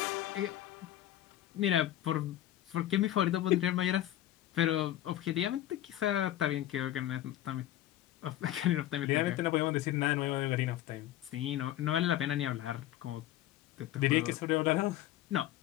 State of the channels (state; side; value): quieter; right; 13.4 dB